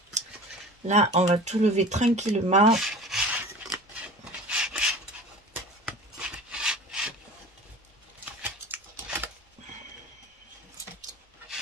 là, on va tout lever tranquillement.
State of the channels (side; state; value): both; normal; correlation 0.39